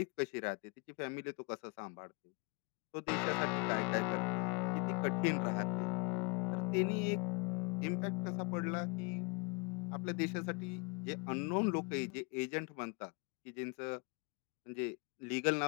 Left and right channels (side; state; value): right; quieter; 32.5 dB